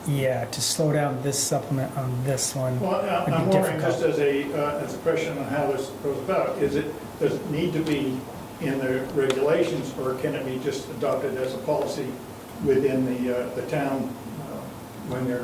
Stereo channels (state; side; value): identical; both; correlation 1.00